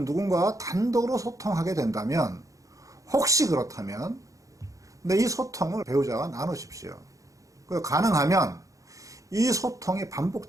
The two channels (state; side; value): late; left; 0.16 ms